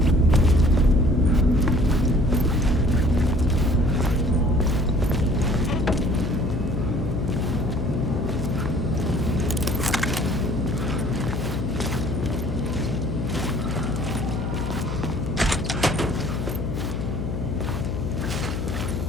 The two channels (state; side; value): noise; left; hum, 3 dB below the sound